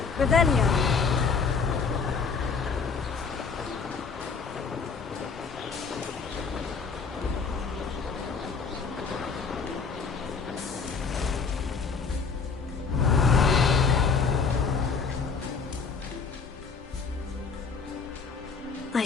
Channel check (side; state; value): right; quieter; 5.3 dB